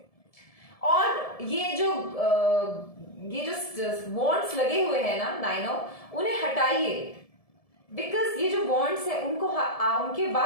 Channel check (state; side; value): late; right; 1.7 ms